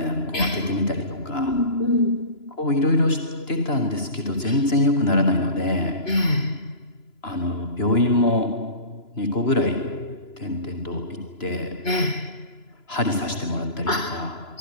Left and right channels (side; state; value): right; late; 2.9 ms